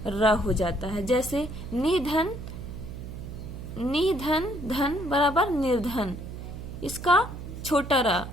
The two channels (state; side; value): noise; right; hum, 10 dB below the sound